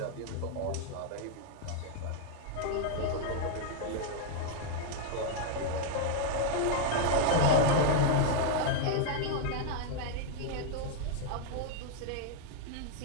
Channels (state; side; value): different; both; correlation -0.01